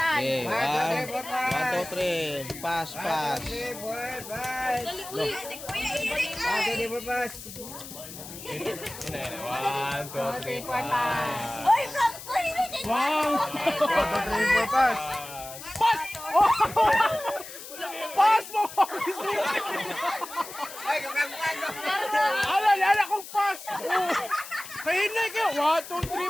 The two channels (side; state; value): left; noise; hiss, 13 dB below the sound